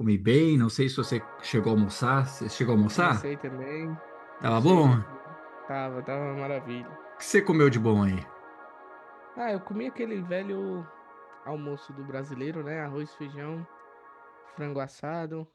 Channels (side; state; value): both; identical; correlation 1.00